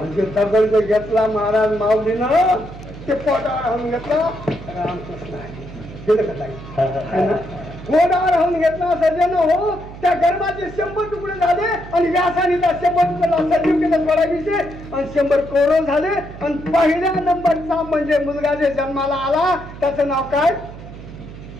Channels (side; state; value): right; noise; hum, 14 dB below the sound